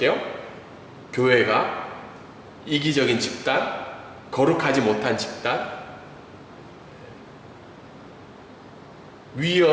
해요? 교회가 이기적인 집단, 거룩하지 못한 집단,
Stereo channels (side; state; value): both; identical; correlation 1.00